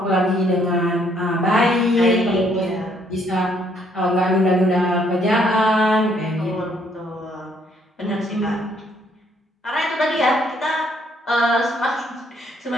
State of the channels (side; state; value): both; normal; correlation 0.67